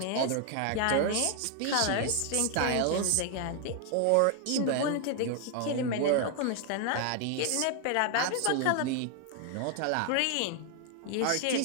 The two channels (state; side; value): different; both; correlation 0.00